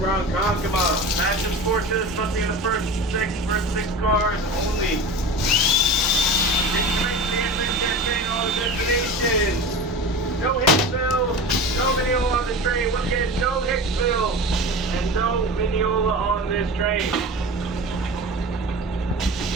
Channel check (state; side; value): normal; both; correlation 0.32